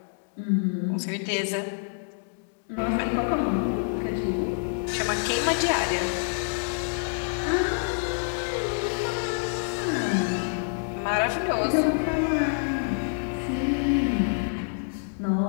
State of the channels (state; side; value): silent; right; digital silence